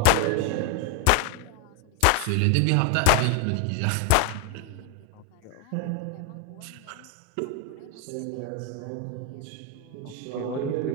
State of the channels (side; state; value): both; different; correlation 0.01